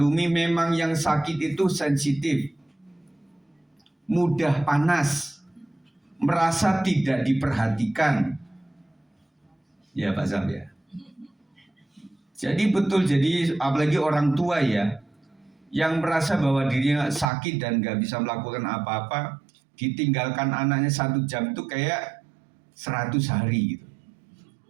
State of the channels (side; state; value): left; drops out; at 17.3 s